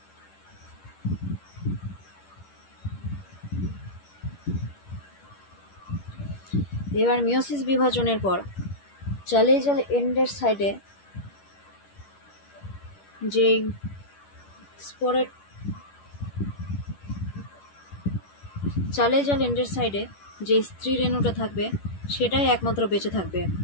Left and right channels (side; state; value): right; late; 10 ms